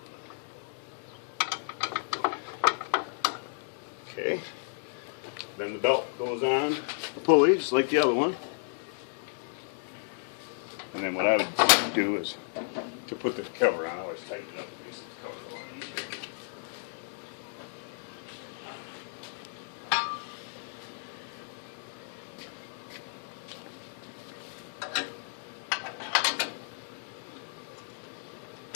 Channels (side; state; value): right; silent; digital silence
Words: Okay. Then the belt goes on the pulley, just like the other one. And then what I would do is to put the cover on, I always tighten it up. Makes the cover a lot easier.